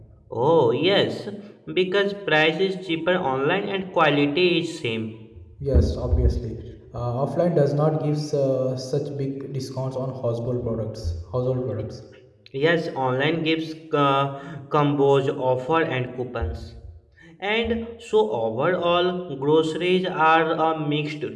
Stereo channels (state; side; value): identical; both; correlation 1.00